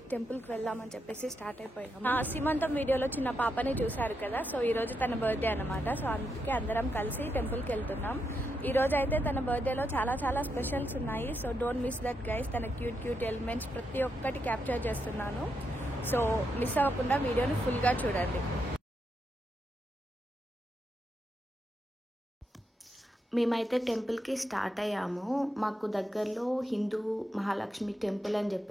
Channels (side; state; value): both; normal; correlation 0.83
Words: టెంపుల్కి వెళ్దామని చెప్పేసి స్టార్ట్ అయిపోయాము. సీమంతం వీడియోలో చిన్న పాపని చూశారు కదా, సో ఈరోజు తన బర్త్డే అనమాట. సో అందుకే అందరం కలిసి టెంపుల్కి వెళ్తున్నాం. ఈరోజు అయితే తన బర్త్డేలో చాలా స్పెషల్స్ ఉన్నాయి. So don't miss that guys. తన క్యూట్ ఎలిమెంట్స్ ప్రతి ఒక్కటి క్యాప్చర్ చేస్తున్నాను. సో మిస్ అవ్వకుండా వీడియోని ఫుల్గా చూడండి. మేమైతే టెంపుల్కి స్టార్ట్ అయ్యాము. మాకు దగ్గరలో హిందూ మహాలక్ష్మి టెంపుల్ అని